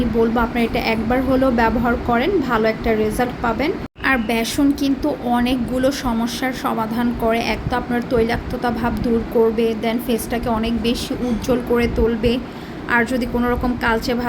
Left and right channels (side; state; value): both; identical; correlation 1.00